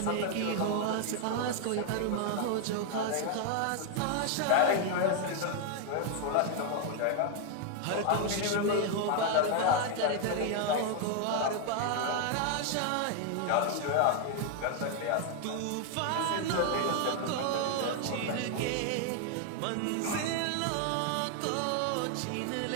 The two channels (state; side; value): different; both; correlation 0.00